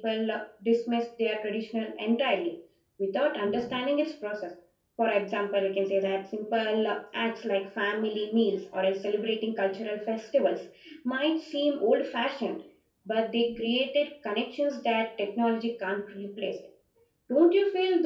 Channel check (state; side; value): identical; both; correlation 1.00